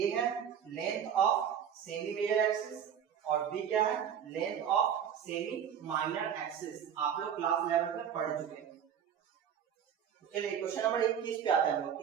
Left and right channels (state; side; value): quieter; left; 8.5 dB